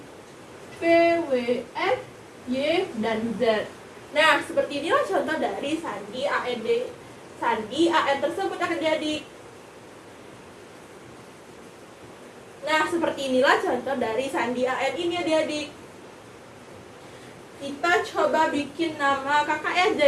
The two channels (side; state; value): both; identical; correlation 1.00